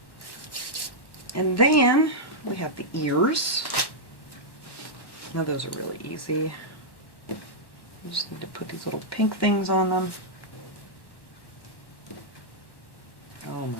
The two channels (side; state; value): right; late; 1.1 ms